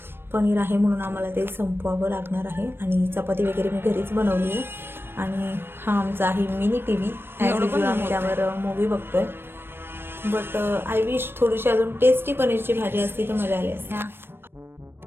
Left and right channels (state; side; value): late; left; 0.10 ms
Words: पनीर आहे म्हणून आम्हाला ते संपवावं लागणार आहे. आणि चपाती वगैरे मी घरीच बनवली आहे. आणि हा आमचा आहे मिनी टी व्ही. आम्ही त्यावर मूवी बघतोय. बट आय विश थोडीशी अजून टेस्टी पनीरची भाजी असती तर मजा आली असते.